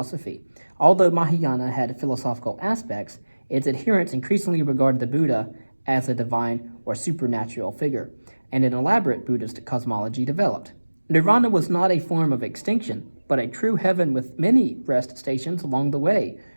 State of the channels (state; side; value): inverted; both; correlation -1.00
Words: Although Mahayana had philosophical aspects, its adherents increasingly regarded the Buddha as a divine or supernatural figure, and an elaborate Buddhist cosmology developed. Nirvana was not a form of extinction, but a true heaven with many rest stations along the way